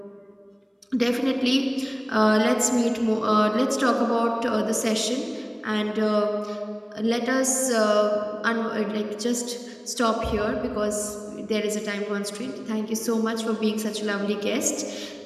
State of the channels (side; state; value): both; identical; correlation 1.00